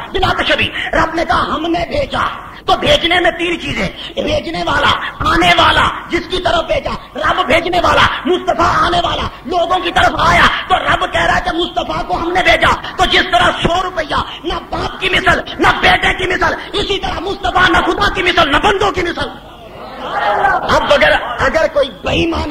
بلا تشبیہ رب نے کہا ہم نے بھیجا. تو بھیجنے میں 3 چیزیں، بھیجنے والا، آنے والا، جس کی طرف بھیجا. رب بھیجنے والا، مصطفیٰ آنے والا، لوگوں کی طرف آیا. تو رب کہہ رہا ہے کہ مصطفیٰ کو ہم نے بھیجا. تو جس طرح 100 روپیہ نہ باپ کی مثل، نہ بیٹے کی مثل، اسی طرح مصطفیٰ نہ خدا کی مثل، نہ بندوں کی مثل. اب اگر کوئی بے ایمان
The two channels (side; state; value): both; identical; correlation 1.00